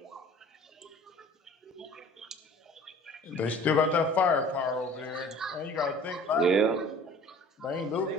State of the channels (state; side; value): normal; both; correlation 0.47